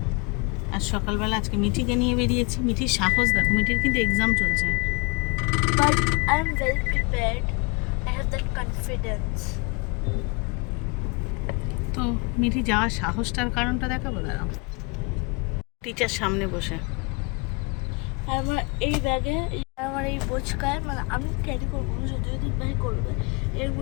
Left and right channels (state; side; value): quieter; right; 29.7 dB